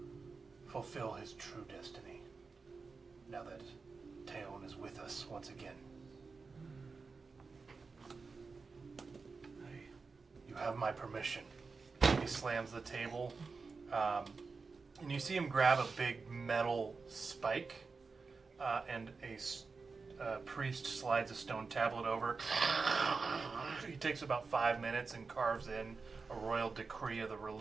fulfill his true destiny now that Teon is with us once again. You have my permission. He slams the table, and you see him grab a big metal spike, and a priest slides a stone tablet over. He takes about 5 minutes and carves in a royal decree of the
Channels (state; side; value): quieter; left; 4.5 dB